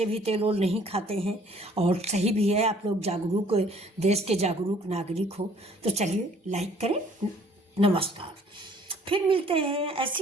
भी तेल ओल नहीं खाते हैं, और सही भी है, आप लोग जागरूक, देश के जागरूक नागरिक हो। तो चलिए लाइक करें। नमस्कार, फिर मिलते हैं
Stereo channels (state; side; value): normal; both; correlation 0.57